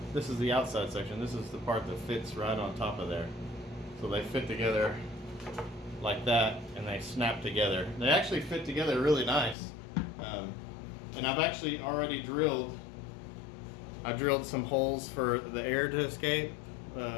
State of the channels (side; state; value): right; drops out; at 9.6 s